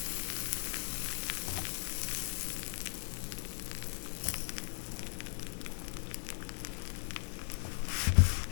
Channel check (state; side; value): silent; right; 53 dB below the other